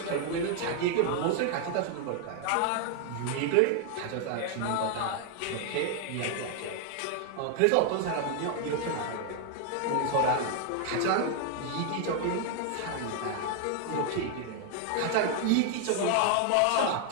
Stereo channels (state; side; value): different; both; correlation 0.00